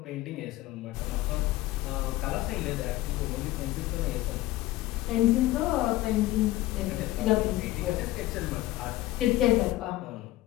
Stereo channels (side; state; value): right; quieter; 16.6 dB